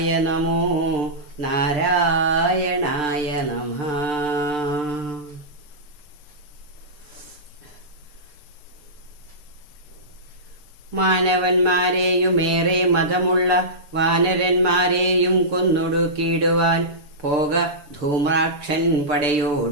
നമോ നാരായണായ നമഃ. മാനവന്മാരെയുമേറെ മതമുള്ള വാനരന്മാരെയും കൊന്നൊടുക്കിയിടുവാൻ പോക ധൂമ്രാക്ഷൻ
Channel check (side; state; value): left; late; 6.7 ms